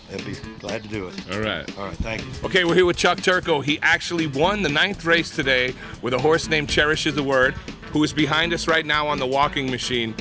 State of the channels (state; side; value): identical; both; correlation 1.00